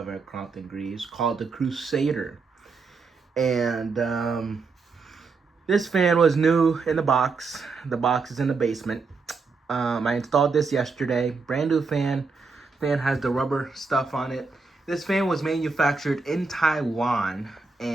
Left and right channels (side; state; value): left; quieter; 4.4 dB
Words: a Crompton Greaves called the Crusader. And this fan was new in the box. The box is in the basement. I installed this yesterday. Brand new fan. Fan has the rubber stuff on it. This fan was manufactured in Taiwan,